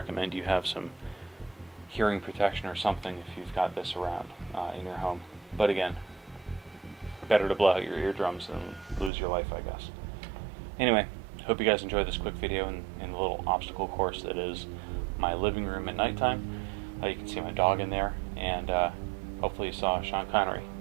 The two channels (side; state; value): left; drops out; at 9.1 s